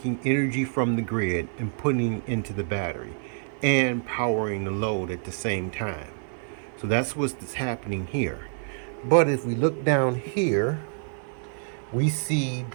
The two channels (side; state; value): left; silent; 60 dB below the other